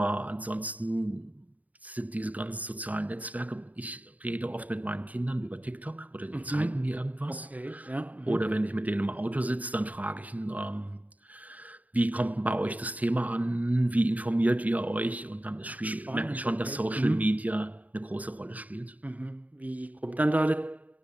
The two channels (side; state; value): left; late; 0.073 ms